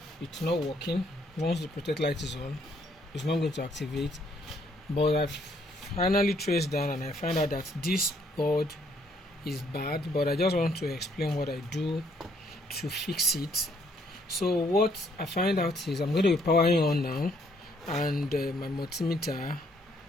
it's not working. Once the protect light is on, it's not going to activate. But I've finally traced down and I find out that this board is bad, but I just want to explain what I do to fix it. So what I find out is I'm going to be powering on now, and my multimeter,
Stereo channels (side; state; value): both; normal; correlation 0.67